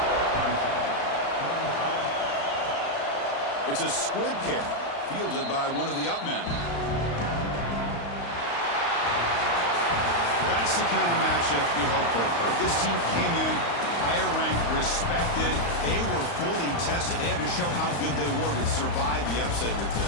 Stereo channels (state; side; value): late; right; 35 ms